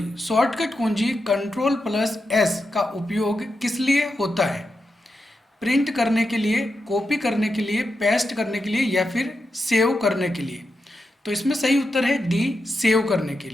शॉर्टकट कुंजी Ctrl+S का उपयोग किस लिए होता है? प्रिंट करने के लिए, कॉपी करने के लिए, पेस्ट करने के लिए या फिर सेव करने के लिए? तो इसमें सही उत्तर है डी, सेव करने के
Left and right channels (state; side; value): normal; both; correlation 0.87